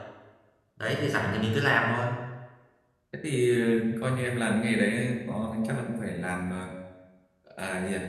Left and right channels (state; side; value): identical; both; correlation 1.00